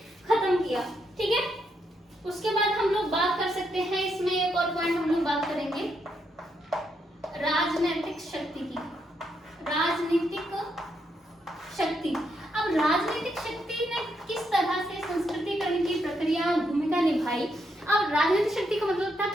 खत्म किया। ठीक है, उसके बाद हम लोग बात कर सकते हैं, इसमें एक और पॉइंट हम लोग बात करेंगे राजनीतिक शक्ति की। राजनीतिक शक्ति, अब राजनीतिक शक्ति ने किस तरह से संस्कृतिकरण की प्रक्रिया भूमिका निभाई। अब राजनीतिक शक्ति का मतलब था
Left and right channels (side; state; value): both; normal; correlation 0.79